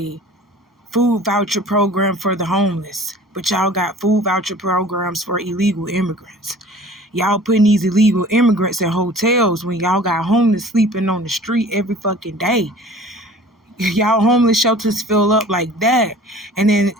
food voucher program for the homeless, but y'all got food voucher programs for illegal immigrants. Y'all putting these illegal immigrants in hotels when y'all got homeless sleeping on the street every fucking day. Y'all homeless shelters fill up like that. And then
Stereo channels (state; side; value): normal; both; correlation 0.46